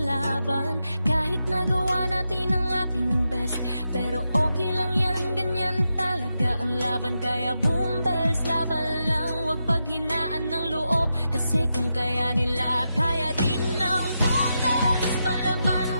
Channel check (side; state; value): both; inverted; correlation -0.87